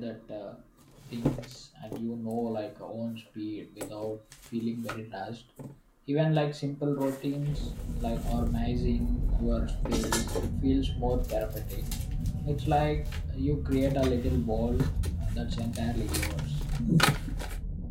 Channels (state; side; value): identical; both; correlation 1.00